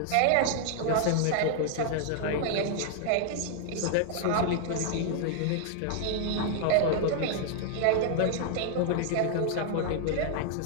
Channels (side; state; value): both; different; correlation 0.00